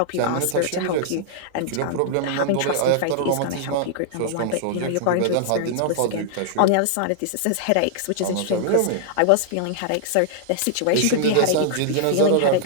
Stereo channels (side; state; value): both; different; correlation -0.01